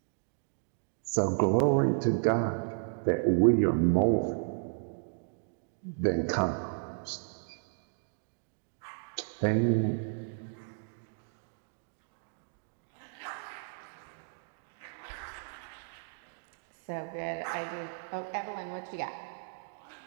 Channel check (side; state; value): left; silent; digital silence